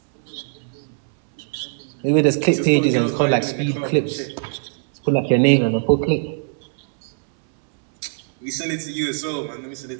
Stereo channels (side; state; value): left; silent; 65 dB below the other